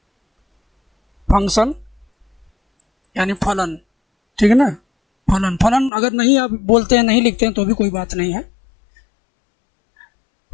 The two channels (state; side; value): drops out; right; at 5.9 s